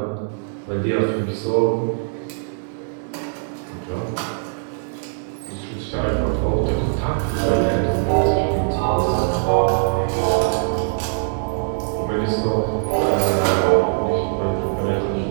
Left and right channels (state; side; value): silent; left; 60 dB below the other